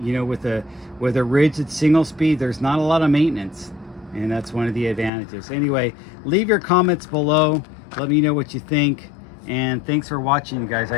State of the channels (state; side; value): drops out; right; at 5.1 s